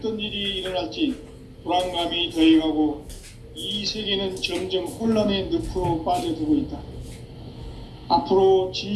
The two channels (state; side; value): identical; both; correlation 1.00